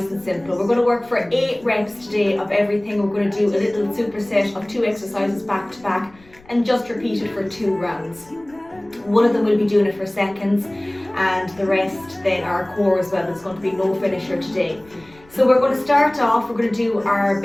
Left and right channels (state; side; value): noise; left; rumble, 27 dB below the sound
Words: and simple. We're going to work for 8 reps today of everything. We're going to do a little superset of 2 exercises back to back and just repeat it for 2 rounds. One of them will be doing it for seconds and the rest then are core as well. It's going to be no finisher today. So we're going to start off, we're going to do our